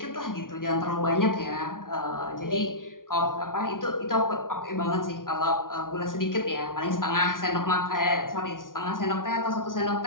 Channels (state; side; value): late; right; 0.89 ms